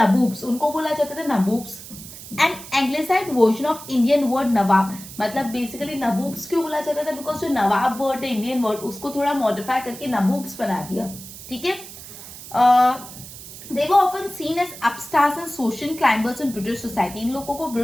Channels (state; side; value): noise; right; hiss, 14 dB below the sound